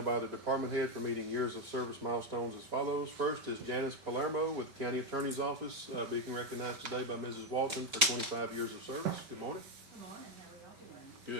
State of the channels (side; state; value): left; late; 5.2 ms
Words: by the department head for meeting years of service milestones as follows. First is Janice Palermo with the County Attorney's Office, being recognized today by Mrs. Walton for 25 years of service. Good morning. Good morning, how are y'all doing?